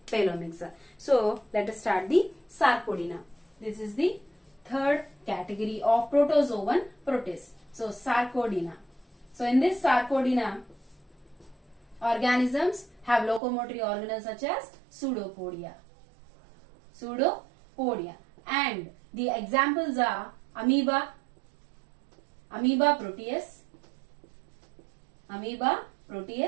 Pelomyxa. So let us start the Sarcodina. This is the third category of protozoan protists. So Sarcodina. So in this Sarcodina, organisms have locomotory organelles such as pseudopodia. And the examples are Amoeba proteus,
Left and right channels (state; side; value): drops out; left; at 13.4 s